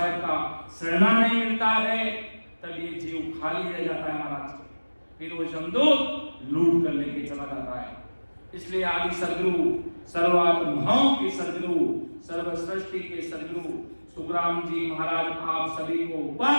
का शरणा नहीं मिलता है, तब ये जीव खाली रह जाता है। महाराज के फिर वो जमदूत लूट कर लेके चला जाता है। इसलिए आदि सदगुरु, सर्वात्माओं के सदगुरु, सर्व सृष्टि के सदगुरु सुखराम जी महाराज आप सभी को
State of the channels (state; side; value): inverted; both; correlation -1.00